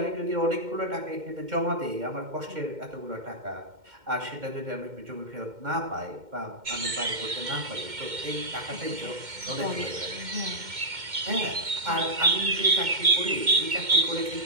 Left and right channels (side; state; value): left; late; 2.1 ms